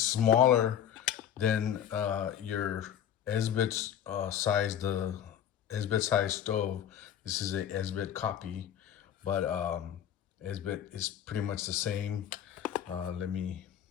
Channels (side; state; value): right; quieter; 9.7 dB